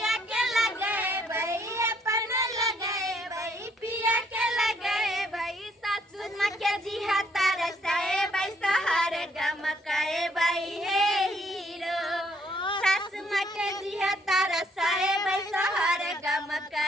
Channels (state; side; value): normal; both; correlation 0.67